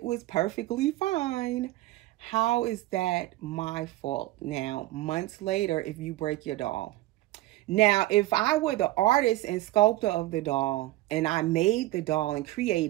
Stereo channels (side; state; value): left; quieter; 17.3 dB